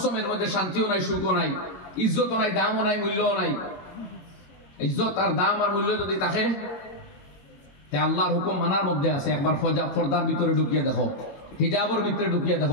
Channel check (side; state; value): right; late; 22 ms